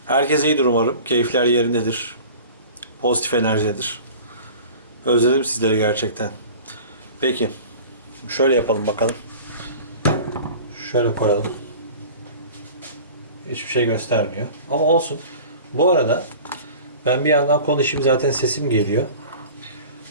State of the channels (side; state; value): both; inverted; correlation -0.40